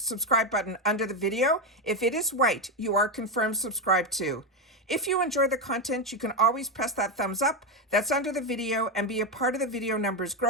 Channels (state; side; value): normal; both; correlation 0.10